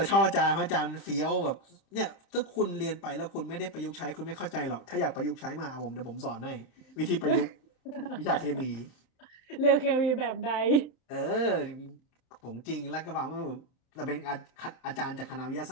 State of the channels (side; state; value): right; late; 30 ms